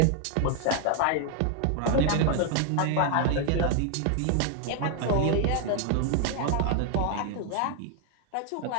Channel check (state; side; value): different; both; correlation 0.00